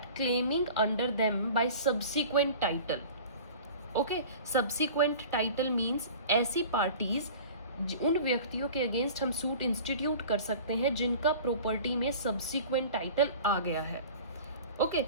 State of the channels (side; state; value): both; inverted; correlation -0.41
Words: claiming under them by subsequent title. Okay, subsequent title means ऐसी parties उन व्यक्तियों के अगेंस्ट हम सूट इंस्टीट्यूट कर सकते हैं जिनका प्रॉपर्टी में सब्सिक्वेंट टाइटल आ गया है. ओके,